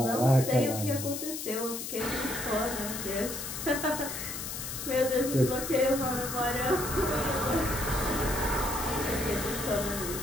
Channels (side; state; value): left; noise; hiss, 6 dB below the sound